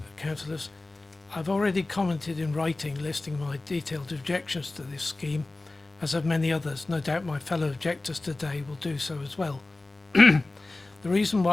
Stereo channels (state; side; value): quieter; right; 3.1 dB